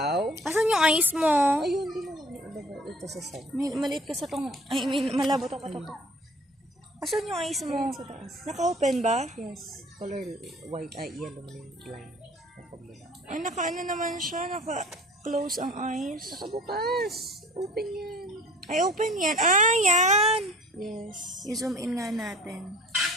Asan yung ice mo? Ayun, di mo lang. Ito sa side. Maliit ka sa tong, I mean, malabo to ka to. Asan yung ice mo? Sa taas. Naka-open ba? Yes. Color white. Ay, yellow man yung line. Napagmula. Ay, naka-ano naman siya, naka-close ang eyes. Nakabukas. Open yan. Ay, open yan. Ah, yan! Yes. I-zoom in nga natin.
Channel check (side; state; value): both; normal; correlation 0.49